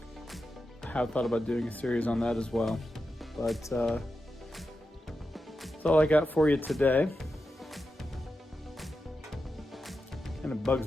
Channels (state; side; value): normal; both; correlation 0.89